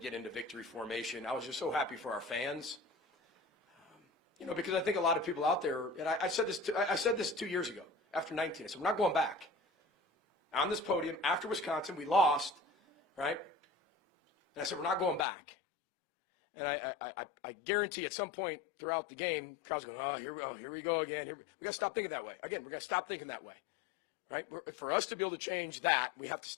get into victory formation, I was just so happy for our fans. You know, because I think a lot of people out there, and I said this 2 years ago after 19. I said, we're not going back. On this podium, after Wisconsin, we lost, right? And I said, we're not going back. And I guarantee at some point throughout the game, the crowd's going, oh, here we go again. We got to stop thinking that way. Again, we got to stop thinking that way. Right? For us to be able to change that, we have to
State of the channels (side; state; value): right; drops out; at 15.2 s